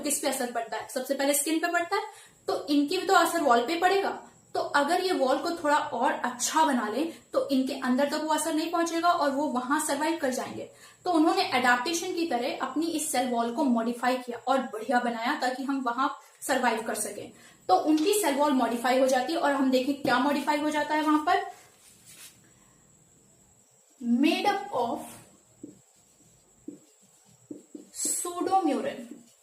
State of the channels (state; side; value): identical; both; correlation 1.00